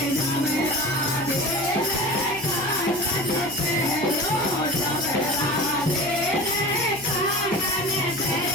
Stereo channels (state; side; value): noise; right; hum, 20 dB below the sound